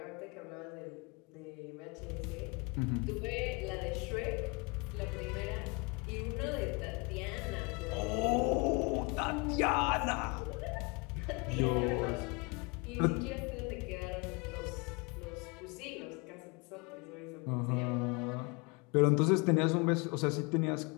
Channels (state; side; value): quieter; right; 29.3 dB